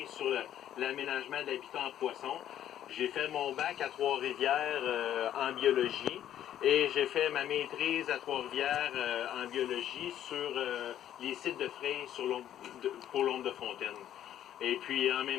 sur l'aménagement de l'habitat en poissons. J'ai fait mon bac à Trois-Rivières en biologie et j'ai fait ma maîtrise à Trois-Rivières en biologie sur les sites de frais pour l'ombre de fontaine. Et puis en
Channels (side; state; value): right; quieter; 11.1 dB